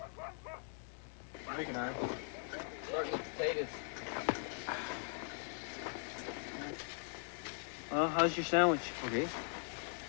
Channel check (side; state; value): right; silent; 51 dB below the other